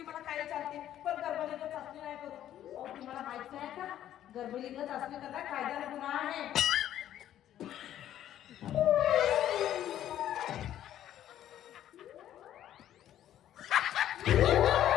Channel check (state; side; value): quieter; right; 11.7 dB